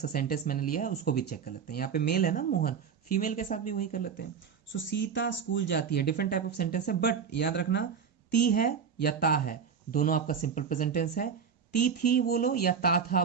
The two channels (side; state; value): left; quieter; 6.8 dB